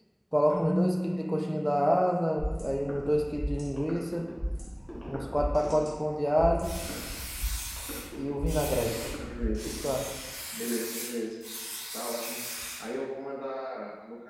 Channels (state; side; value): identical; both; correlation 1.00